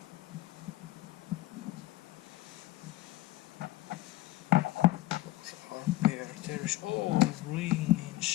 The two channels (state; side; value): quieter; right; 17.1 dB